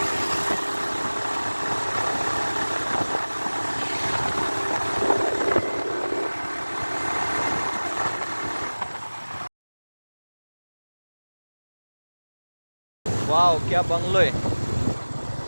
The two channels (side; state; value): both; inverted; correlation -1.00